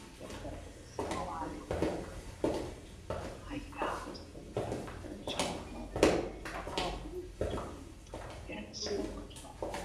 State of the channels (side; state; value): both; identical; correlation 1.00